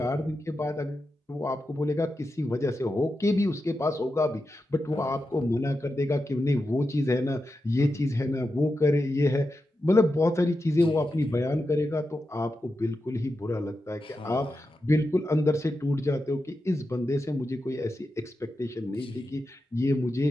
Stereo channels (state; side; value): normal; both; correlation 0.89